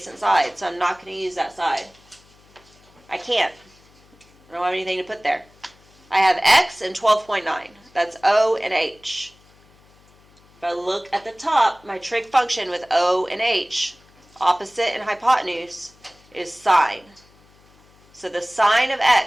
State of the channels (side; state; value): left; noise; hum, 29 dB below the sound